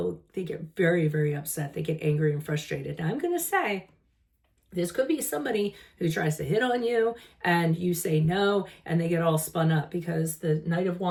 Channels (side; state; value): both; identical; correlation 1.00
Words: get very, very upset. They get angry and frustrated. Now I'm going to say This could be somebody who tries to hit on you and you say no, and they get all spun up because the Knight of